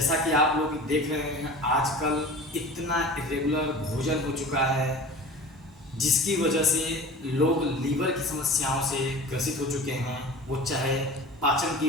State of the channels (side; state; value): both; normal; correlation 0.38